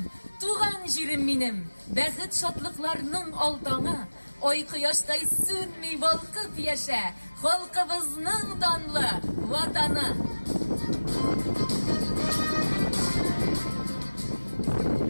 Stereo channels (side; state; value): both; inverted; correlation -1.00